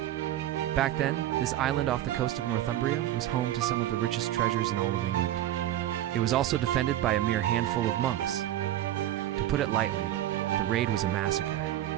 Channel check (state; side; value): quieter; left; 13.2 dB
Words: Back then, this island off the coast of Northumbria was home to some of the richest treasures in all of England. It was also defended by a mere handful of monks. To put it lightly, the raid was a massacre.